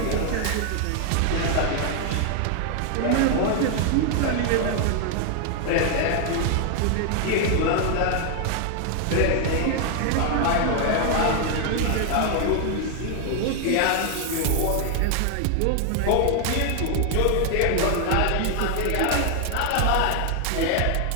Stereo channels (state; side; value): different; both; correlation 0.00